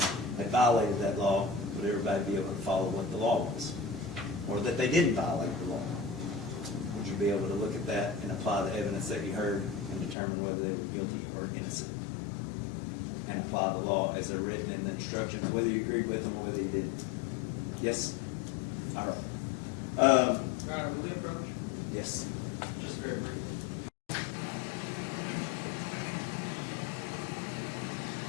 had violated that law, would everybody be able to follow what the law was? Or that they didn't violate the law? Would you be able to look at that and apply the evidence that you heard and determine whether they were guilty or innocent? And apply the law as they're written in the instructions, whether you agreed with them or whether you didn't? Yes? All right. Your Honor, may we approach? Yes. Just very briefly.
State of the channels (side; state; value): right; drops out; at 10.2 s